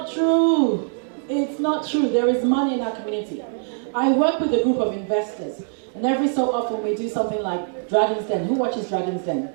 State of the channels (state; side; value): silent; left; digital silence